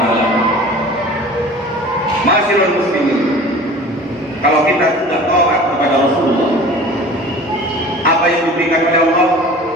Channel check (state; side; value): normal; both; correlation 0.42